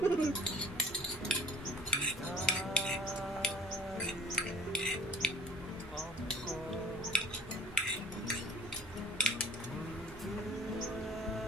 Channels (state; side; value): normal; both; correlation 0.48